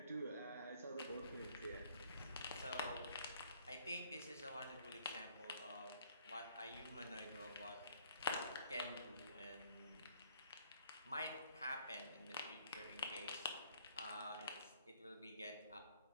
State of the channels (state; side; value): inverted; both; correlation -0.62